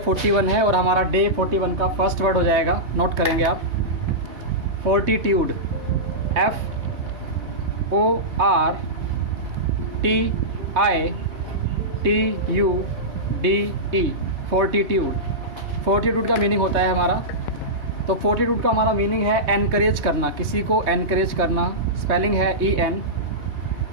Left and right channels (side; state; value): left; late; 3.3 ms